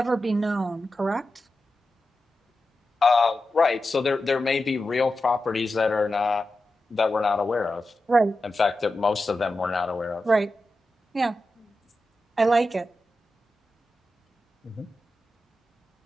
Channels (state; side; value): normal; both; correlation 0.91